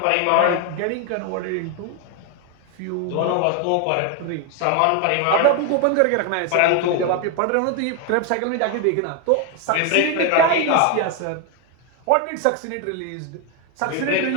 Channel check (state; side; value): different; both; correlation 0.01